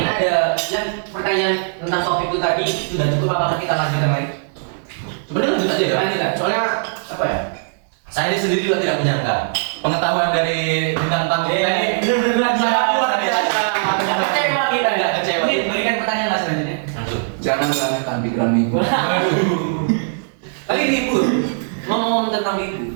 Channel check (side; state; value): left; silent; 66 dB below the other